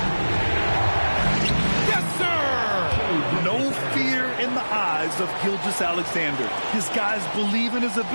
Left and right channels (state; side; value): inverted; both; correlation -1.00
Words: Yes, sir! No fear in the eyes of Gilgeous-Alexander. His guys believe in his